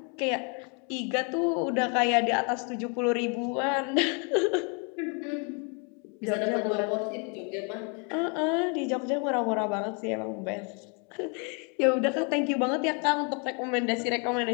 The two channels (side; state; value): right; quieter; 36.3 dB